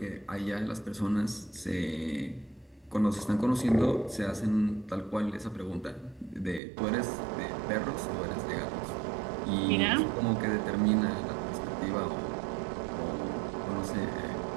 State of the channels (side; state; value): left; drops out; at 6.6 s